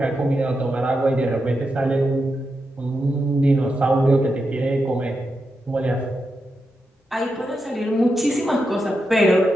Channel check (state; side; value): normal; both; correlation 0.87